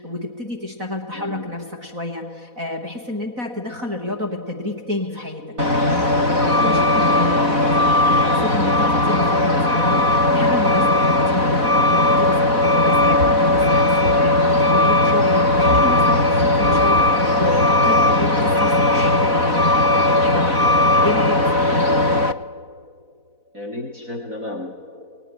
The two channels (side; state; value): left; late; 4.1 ms